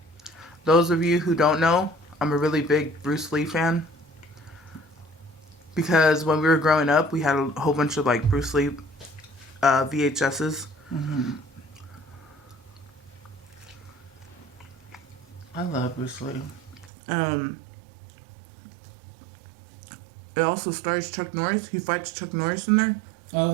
Those of you who don't know, I'm a really big Bruce Lee fan. Because when we were growing up, we had a whole bunch of like Bruce Lee VHSs. I love Bruce Lee. It also stars Chuck Norris. He fights Chuck Norris in there. Oh,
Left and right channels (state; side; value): drops out; left; at 16.9 s